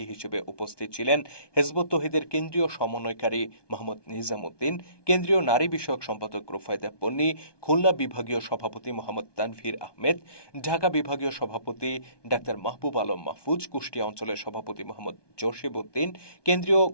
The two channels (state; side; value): late; right; 1.2 ms